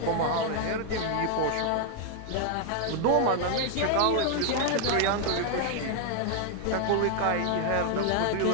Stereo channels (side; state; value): both; different; correlation 0.00